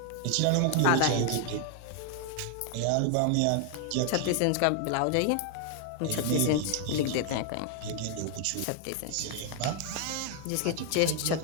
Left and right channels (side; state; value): both; different; correlation 0.00